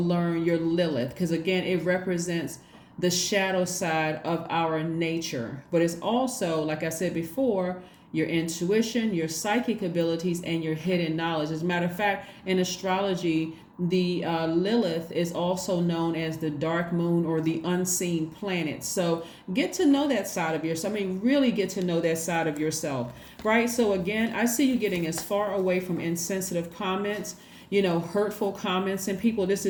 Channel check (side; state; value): both; identical; correlation 1.00